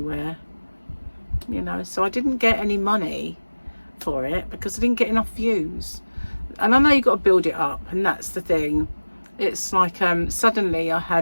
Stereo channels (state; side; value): inverted; both; correlation -1.00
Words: you know. So I didn't get any money for it because I didn't get enough views. And I know you've got to build it up, and that's the thing. It's like suddenly I